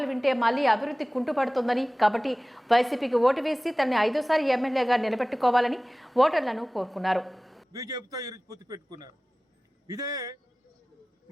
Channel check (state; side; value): normal; both; correlation 0.98